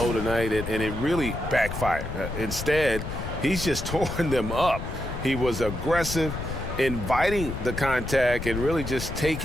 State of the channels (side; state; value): left; noise; rumble, 7 dB below the sound